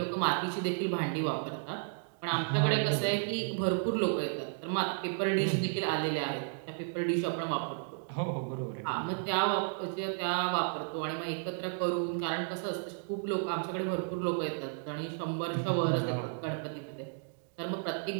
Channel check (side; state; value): left; silent; digital silence